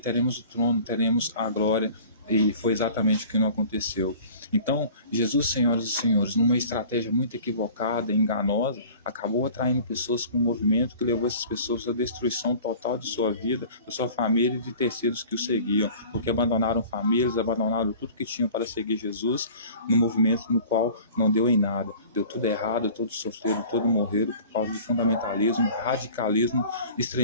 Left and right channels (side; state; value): both; inverted; correlation -0.44